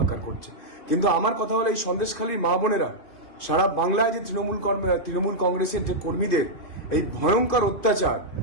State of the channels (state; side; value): late; right; 2.7 ms